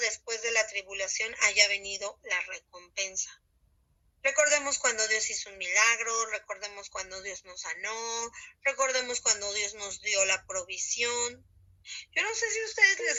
de la tribulación haya venido la recompensa. Recordemos cuando Dios hizo un milagro, recordemos cuando Dios nos sanó, recordemos cuando Dios nos dio la provisión. Yo no sé si a ustedes les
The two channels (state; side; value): identical; both; correlation 1.00